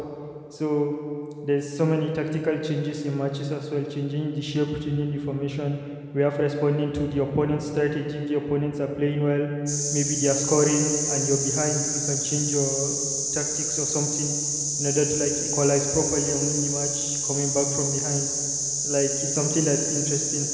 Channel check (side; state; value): both; identical; correlation 1.00